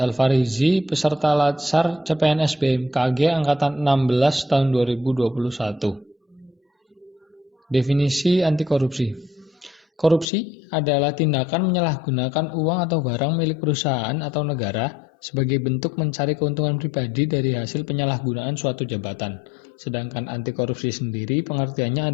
Alfarizi, peserta Latsar CPNS BMKG Angkatan 16 tahun 2021. Definisi anti korupsi. Korupsi adalah tindakan menyalahgunakan uang atau barang milik perusahaan atau negara sebagai bentuk mencari keuntungan pribadi dari hasil penyalahgunaan suatu jabatan. Sedangkan anti korupsi sendiri pengertiannya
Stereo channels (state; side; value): drops out; right; at 10.2 s